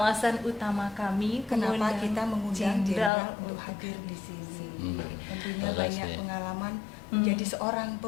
utama kami kenapa mengundang kita mengundang Jenderal untuk hadir di sini. Tentunya Terima banyak kasih. pengalaman menjadi seorang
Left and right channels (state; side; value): drops out; right; at 3.1 s